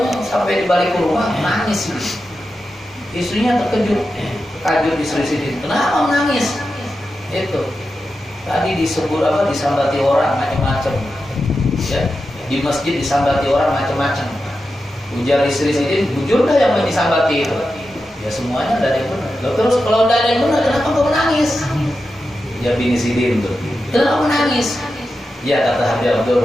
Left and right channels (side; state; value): both; normal; correlation 0.90